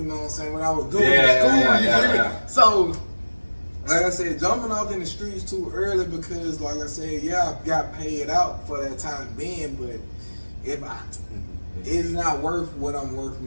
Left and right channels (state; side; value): inverted; both; correlation -1.00